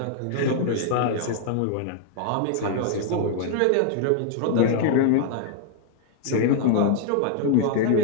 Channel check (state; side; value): different; both; correlation 0.00